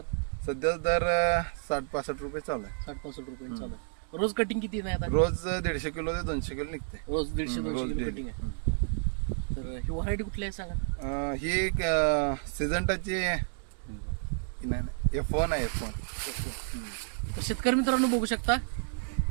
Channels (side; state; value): left; silent; digital silence